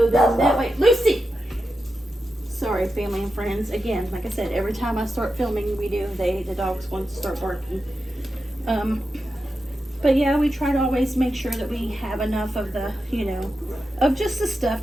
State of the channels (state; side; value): normal; both; correlation 0.89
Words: then that way, Lucy! Sorry, family and friends. Again, like I said, every time I start filming, the dogs want to start barking. But yeah, we try to always make sure that we have enough of the, you know, of just the stuff